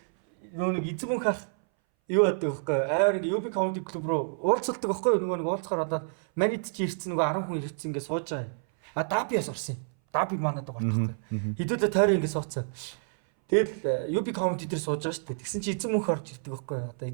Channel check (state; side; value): silent; left; 59 dB below the other